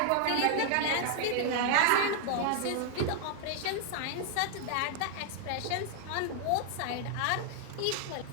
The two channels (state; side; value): different; both; correlation 0.00